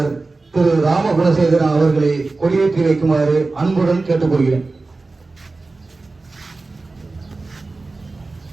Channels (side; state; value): left; quieter; 3.5 dB